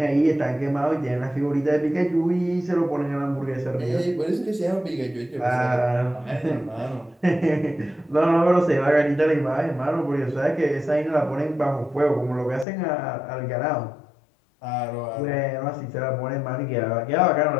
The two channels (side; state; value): right; drops out; at 12.7 s